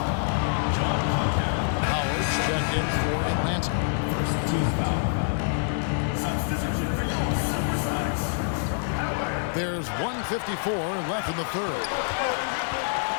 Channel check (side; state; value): right; silent; digital silence